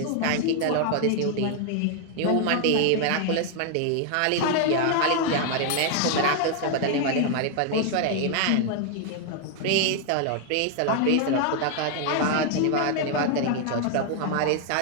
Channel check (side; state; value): both; different; correlation 0.00